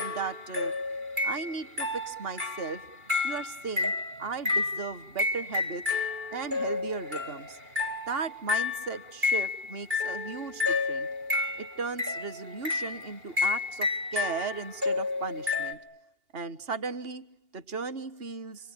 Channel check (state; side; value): late; left; 2.8 ms